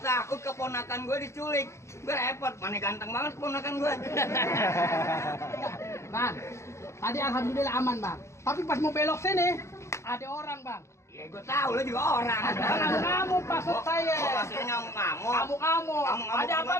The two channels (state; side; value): late; right; 0.14 ms